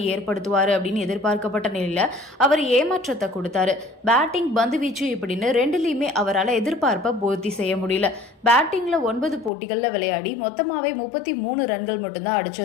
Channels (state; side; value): drops out; right; at 9.5 s